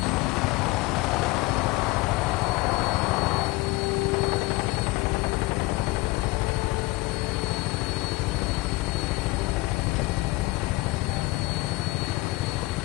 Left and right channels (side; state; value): right; quieter; 21.3 dB